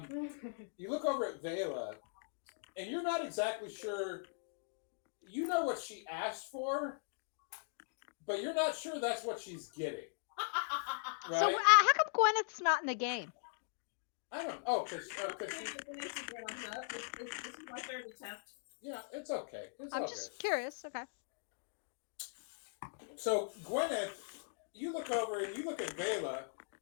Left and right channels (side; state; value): right; silent; digital silence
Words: You look over at Vela, and you're not exactly sure. You know what she asked for, but you're not sure that's what she's getting. Right? So how come Gwyneth's not in the game? I don't. Oh, because This is my third attempt. yeah, it's okay. I'm all just good. curious. Okay. So Gwyneth, you look over and you look at Vela,